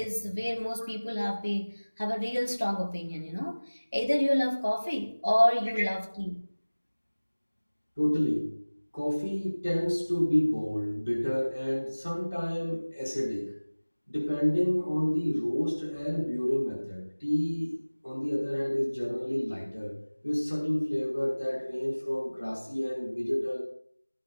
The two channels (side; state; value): both; inverted; correlation -1.00